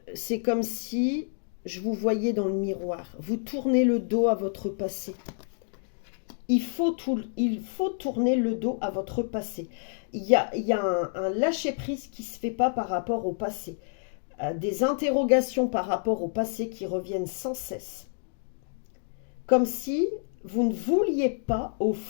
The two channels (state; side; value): silent; right; digital silence